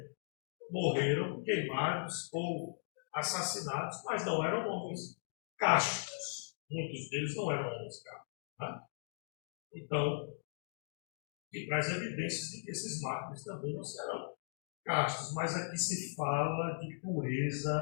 morreram queimados ou assassinados, mas não eram homens castos. Muitos deles não eram homens castos. Né? Então, que traz evidências de que esses mártires também não serão castos, mas aqui se fala de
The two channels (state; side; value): silent; right; digital silence